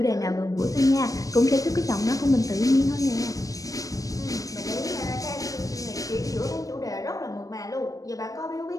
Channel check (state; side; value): late; right; 0.17 ms